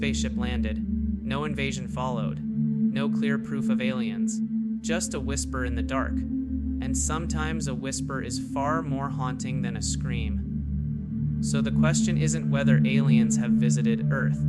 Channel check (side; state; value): both; identical; correlation 1.00